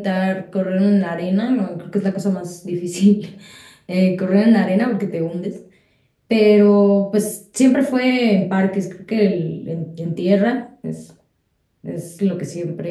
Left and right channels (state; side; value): identical; both; correlation 1.00